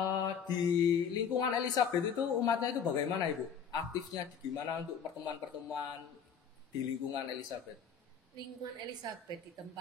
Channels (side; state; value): right; quieter; 7.0 dB